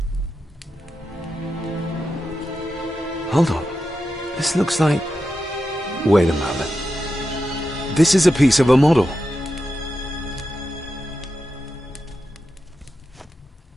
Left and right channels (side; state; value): both; normal; correlation 0.89